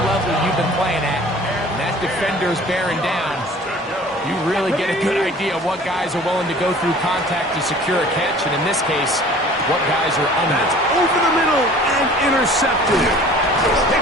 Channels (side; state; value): both; normal; correlation 0.47